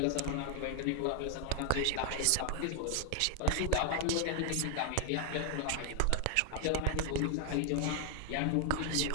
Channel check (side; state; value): both; different; correlation 0.00